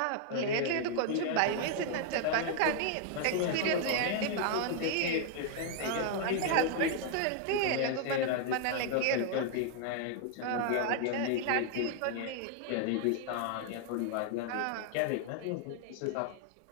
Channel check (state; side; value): different; both; correlation 0.00